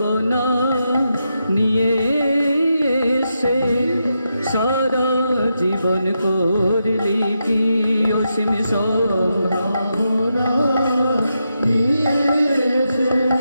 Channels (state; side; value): inverted; both; correlation -0.85